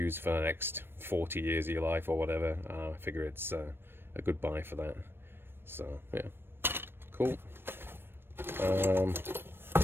for the next 40 years of your life or whatever. I figure it's a good buy for that. So yeah, cool.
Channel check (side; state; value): left; late; 0.10 ms